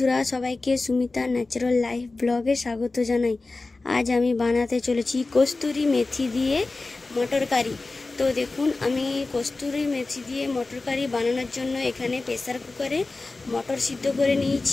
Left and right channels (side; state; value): right; quieter; 3.4 dB